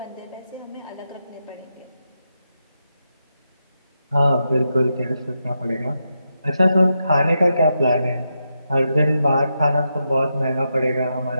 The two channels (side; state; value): both; inverted; correlation -0.85